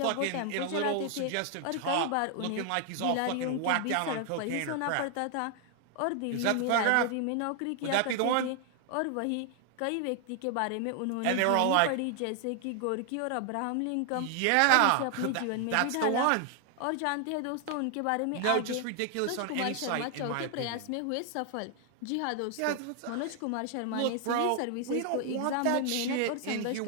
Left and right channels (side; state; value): both; different; correlation 0.00